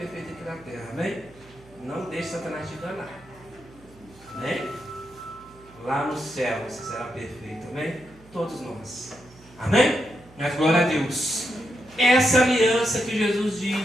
aqui na terra. Amém? Não deixe Satanás te enganar. Amém? Lá no céu você será perfeito. Amém? Todos nós. Amém? Mas glória a Deus. Essa aliança que Jesus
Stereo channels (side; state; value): right; noise; hum, 25 dB below the sound